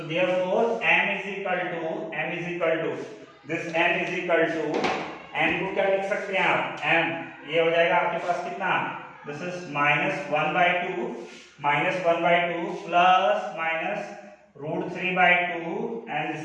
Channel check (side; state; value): both; identical; correlation 1.00